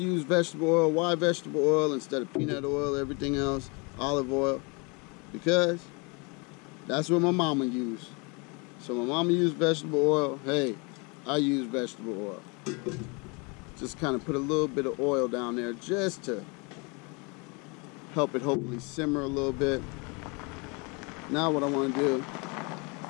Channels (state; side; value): quieter; right; 30.3 dB